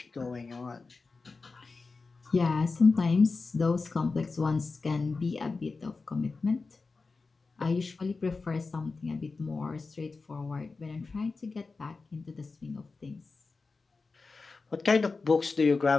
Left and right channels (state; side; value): quieter; right; 4.1 dB